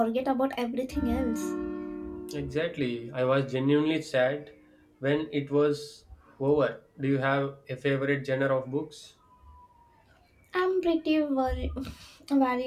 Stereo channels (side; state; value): both; identical; correlation 1.00